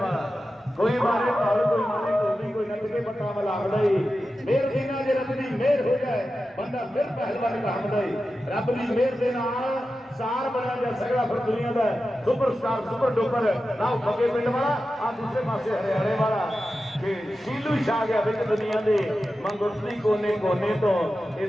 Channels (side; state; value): both; normal; correlation 0.92